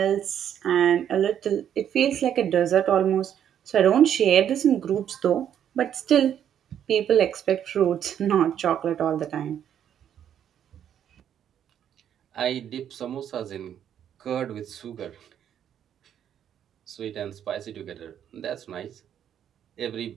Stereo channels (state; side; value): quieter; left; 9.6 dB